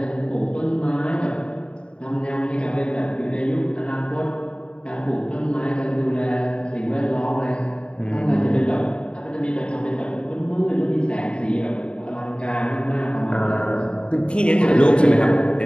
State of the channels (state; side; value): late; right; 0.053 ms